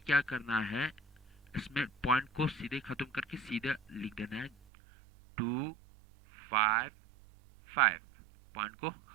क्या करना है, इसमें पॉइंट को सीधे खत्म करके सीधे लिख देना है 2 5 5, पॉइंट को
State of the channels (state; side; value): drops out; left; at 4.5 s